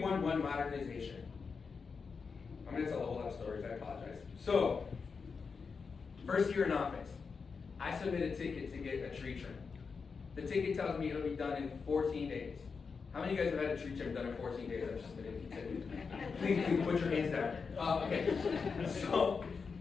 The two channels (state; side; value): quieter; right; 5.2 dB